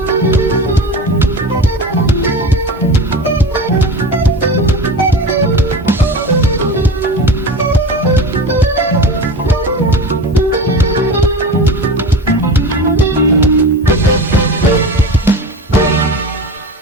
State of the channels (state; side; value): normal; both; correlation 0.30